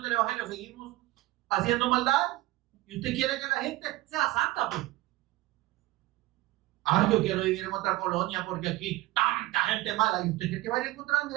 del Evangelio, seguimos haciendo maldad, y usted quiere que la gente sea santa, pues. Ay, yo quiero vivir en otra colonia porque aquí tanta gente mala. ¿Y usted cree que va a ir a encontrar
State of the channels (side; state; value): left; quieter; 18.7 dB